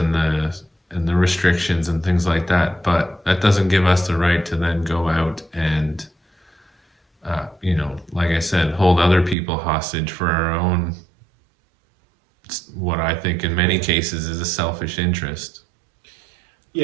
the restrictions and things like that. But that doesn't give us the right to then go out and, like I said, hold other people hostage for our own what I think in many cases is a selfish interest.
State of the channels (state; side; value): drops out; left; at 9.3 s